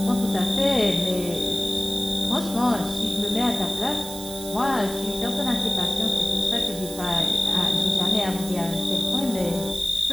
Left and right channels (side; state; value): right; noise; hiss, 11 dB below the sound